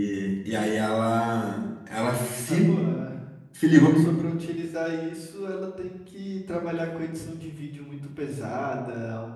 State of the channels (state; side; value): identical; both; correlation 1.00